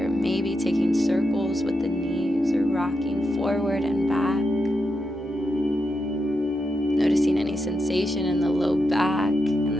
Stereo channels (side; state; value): both; normal; correlation 0.85